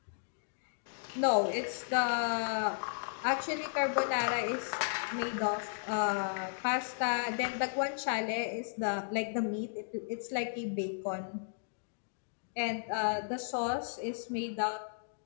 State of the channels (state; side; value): silent; right; digital silence